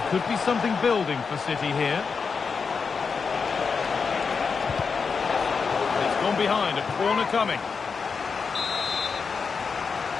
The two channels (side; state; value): right; quieter; 5.4 dB